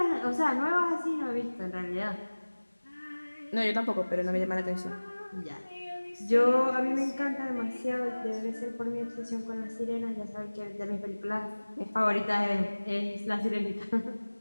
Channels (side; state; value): both; inverted; correlation -1.00